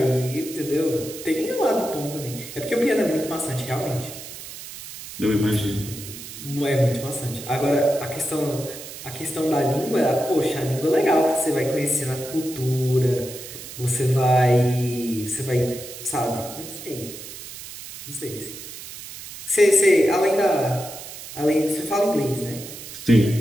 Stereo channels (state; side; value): noise; right; hiss, 12 dB below the sound